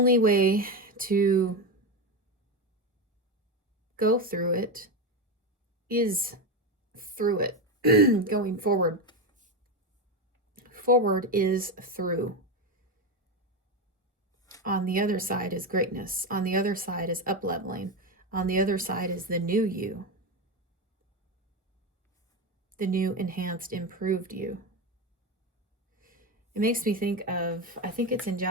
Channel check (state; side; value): normal; both; correlation 0.14